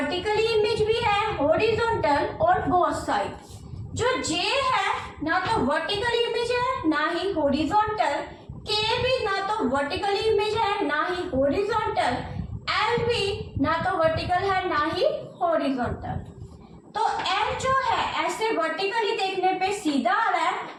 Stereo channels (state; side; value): identical; both; correlation 1.00